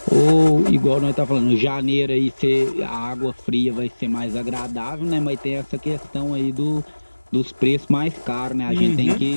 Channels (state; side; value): inverted; both; correlation -1.00